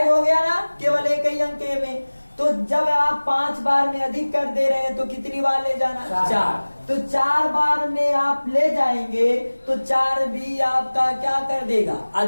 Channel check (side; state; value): both; inverted; correlation -1.00